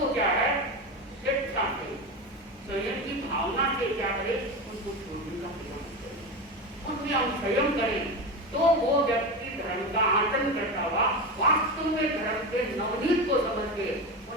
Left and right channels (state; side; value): normal; both; correlation 0.21